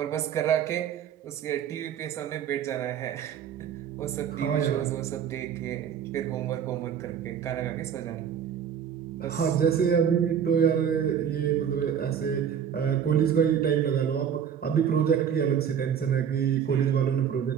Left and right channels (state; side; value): quieter; left; 8.4 dB